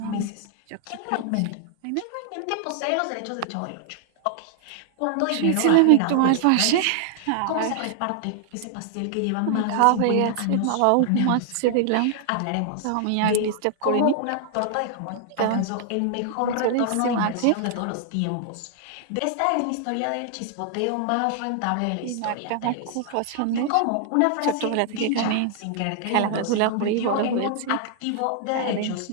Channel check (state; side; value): different; both; correlation 0.00